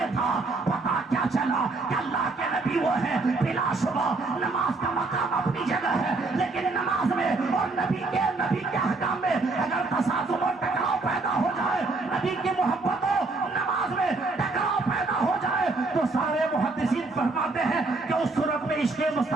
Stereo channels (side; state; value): left; quieter; 3.5 dB